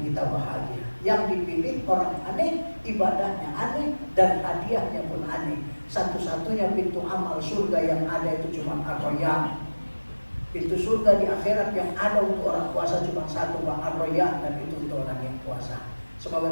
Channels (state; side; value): inverted; both; correlation -1.00